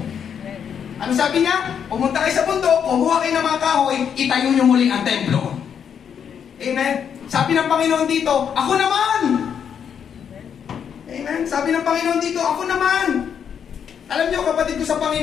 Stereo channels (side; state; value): right; quieter; 7.8 dB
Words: Ano sabi niya? Pumunta kayo sa bundok, kumuha kayo ng mga kahoy, itayo nyo muli ang templo. Amen? Sabi ng Panginoon dito, ako naman! Amen? Sabi ng Panginoon dito, ako naman! Alam niyo, kapatid ko sa